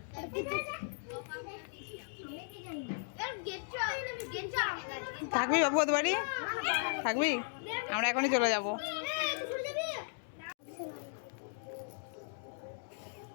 থাকবি বাবু ওদের বাড়ি? থাকবি? আমরা এখনই চলে যাব।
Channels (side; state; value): right; silent; digital silence